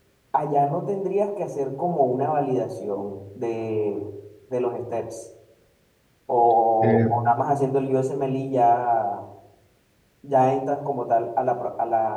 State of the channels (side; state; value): both; identical; correlation 1.00